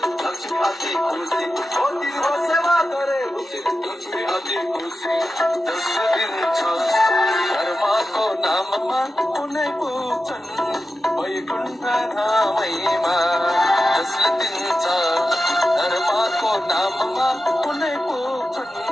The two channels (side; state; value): both; normal; correlation 0.92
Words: लक्ष्मी अति खुसी हो तिम्रो सेवा गरे उचित लक्ष्मी अति खुसी जसले दिन्छ धर्मको नाममा कुनै पुग्छन् वैकुण्ठ धामैमा जसले दिन्छ धर्मको नाममा कुनै पुग्छन्